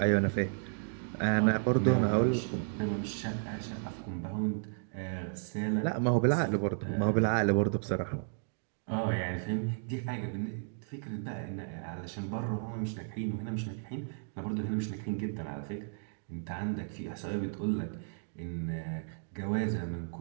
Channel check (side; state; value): left; silent; digital silence